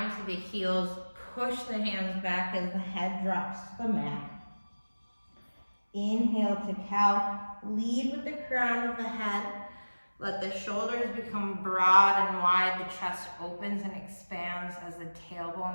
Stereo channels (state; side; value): inverted; both; correlation -1.00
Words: to the heels. Push the hands back as the head drops to the mat. Inhale to cow. Lead with the crown of the head. Let the shoulders become broad and wide. The chest opens and expands as the